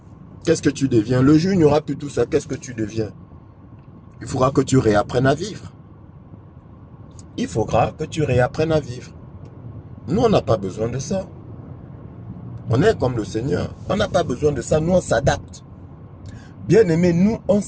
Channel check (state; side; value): identical; both; correlation 1.00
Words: Qu'est-ce que tu deviens? Le jour où il n'y aura plus tout ça, qu'est-ce que tu deviens? Il faudra que tu réapprennes à vivre. Il faudra que tu réapprennes à vivre. Nous, on n'a pas besoin de ça. On est comme le Seigneur. On n'a pas besoin de ça. Nous, on s'adapte. Bien-aimés, nous, on